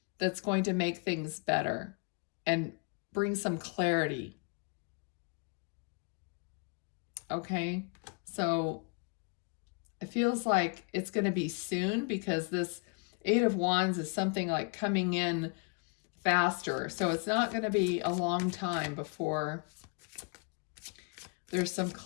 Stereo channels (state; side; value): quieter; right; 34.7 dB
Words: that's going to make things better and bring some clarity. Okay, so it feels like it's going to be soon because this Eight of Wands is something like coming in faster. So it's not going to be a long time before there's some